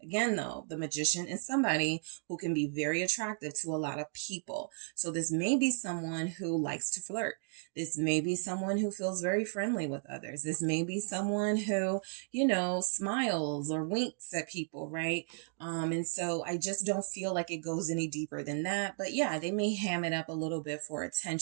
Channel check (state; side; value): silent; left; 55 dB below the other